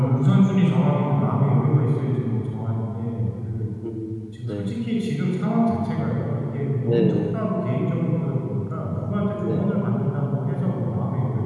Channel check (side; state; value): both; identical; correlation 1.00